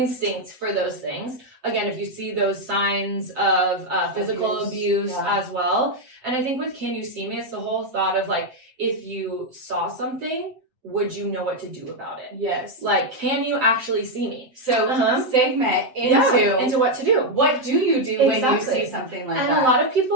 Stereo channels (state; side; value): late; left; 7.9 ms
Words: for those things. Again, if you see those signs of physical abuse as well. And I think with Can You See Me, it's the whole thought of if you saw something, would you know what to do about it? Yes. Can you actually see me? So segment into what to do. What do you do when you see something like that? And a lot of